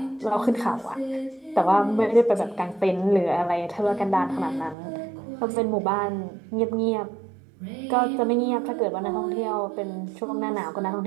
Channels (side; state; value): left; drops out; at 4.8 s